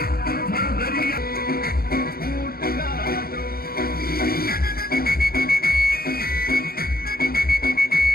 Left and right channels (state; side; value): late; right; 0.44 ms